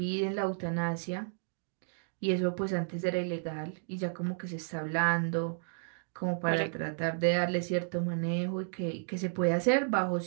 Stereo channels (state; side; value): silent; left; digital silence